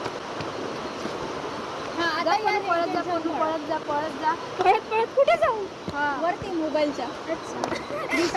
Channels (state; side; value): identical; both; correlation 1.00